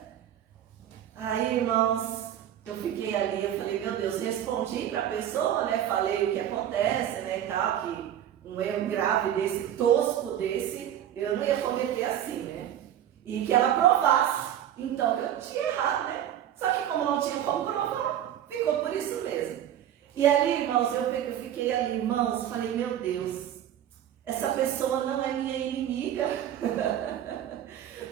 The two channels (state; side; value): quieter; left; 10.8 dB